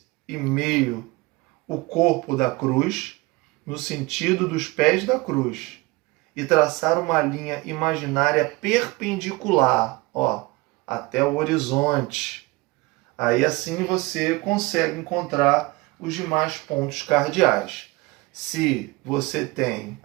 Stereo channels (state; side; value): quieter; left; 22.8 dB